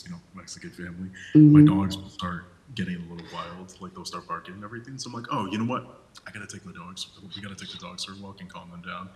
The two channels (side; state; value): both; identical; correlation 1.00